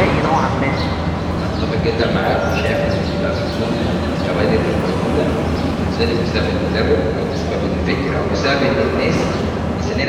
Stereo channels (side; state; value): both; identical; correlation 1.00